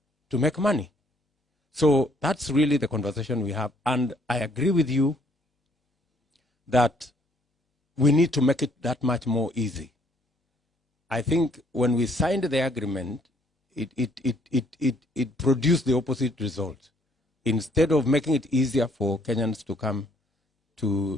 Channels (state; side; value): normal; both; correlation 0.65